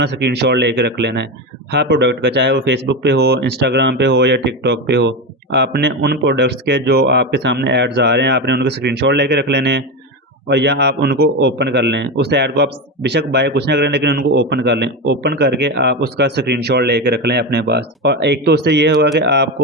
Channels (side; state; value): both; normal; correlation 0.17